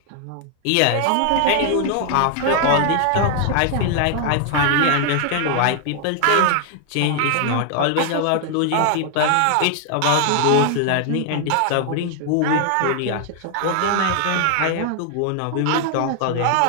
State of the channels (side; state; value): both; different; correlation 0.00